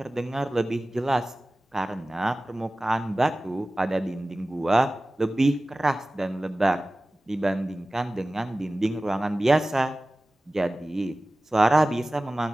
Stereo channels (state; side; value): normal; both; correlation 0.97